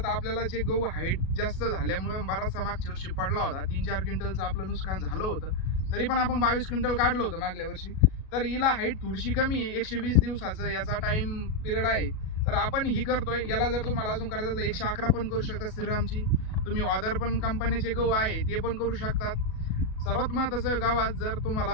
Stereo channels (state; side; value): late; right; 37 ms